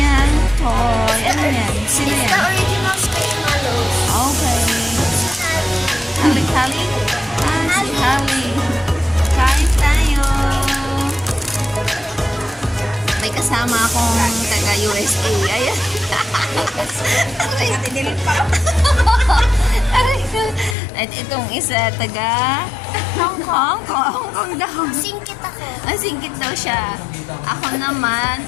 toy. Ano yan? Sino It's the yan? original Squishmallows. Okay. Hali. Hali? Ah, si Hali. Kain tayo. May kasama akong taga-USA. Ayan. Aray, tinilit pa. Aray ko. At itong isa, taga Hong Kong. Hong Kong daw. Singkit ako. Singkit daw siya. Ako naman,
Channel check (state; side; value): drops out; right; at 20.8 s